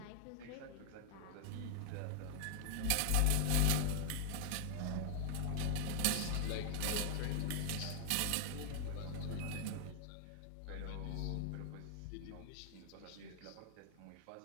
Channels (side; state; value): both; different; correlation 0.00